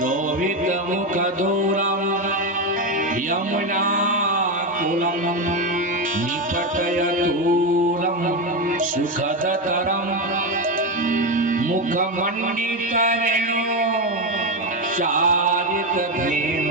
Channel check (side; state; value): both; normal; correlation 0.12